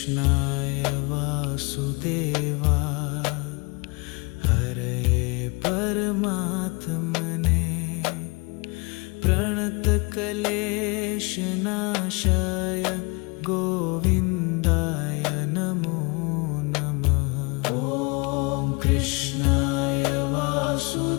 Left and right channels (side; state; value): right; quieter; 29.1 dB